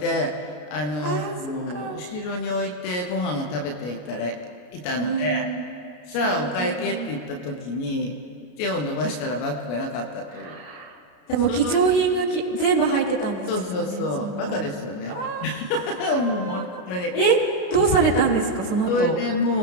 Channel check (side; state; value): right; late; 33 ms